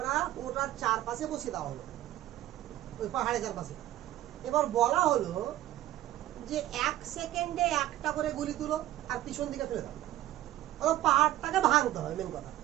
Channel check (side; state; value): left; quieter; 14.4 dB